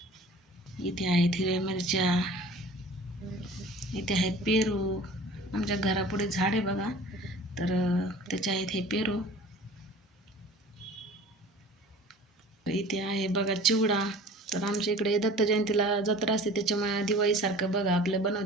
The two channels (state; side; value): normal; both; correlation 0.44